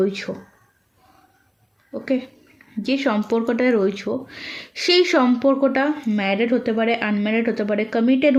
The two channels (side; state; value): both; identical; correlation 1.00